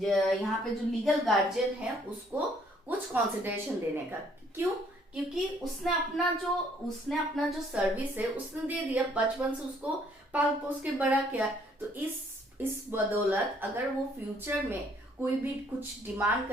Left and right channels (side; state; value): both; normal; correlation 0.64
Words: यहाँ पे जो लीगल गार्जियन है उसको कुछ कंसिडरेशन देने का। क्यों? क्योंकि उसने अपना जो सर्विस है उसने दे दिया, बचपन से उसको पाल पोस के बड़ा किया। तो इस बदौलत अगर वो फ्यूचर में कोई भी कुछ डिमांड